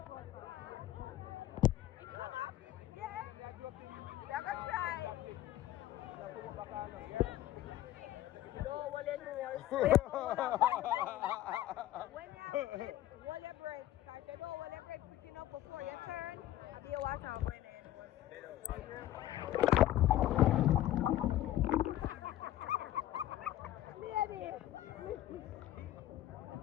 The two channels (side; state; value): right; quieter; 13.9 dB